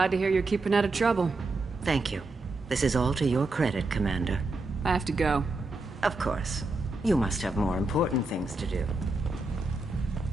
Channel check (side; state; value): left; quieter; 3.1 dB